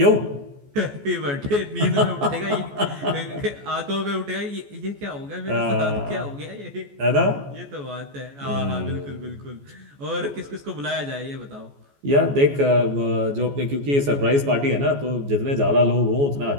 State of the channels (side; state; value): left; late; 14 ms